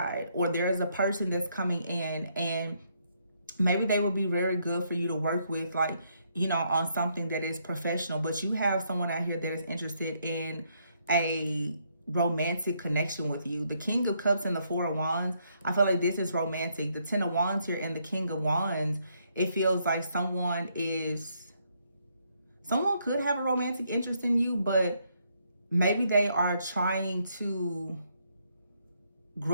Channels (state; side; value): inverted; both; correlation -0.73